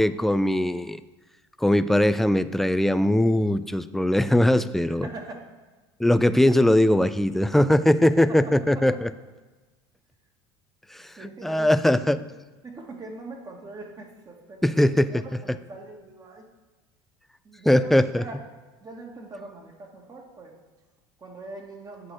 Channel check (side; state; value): both; normal; correlation 0.96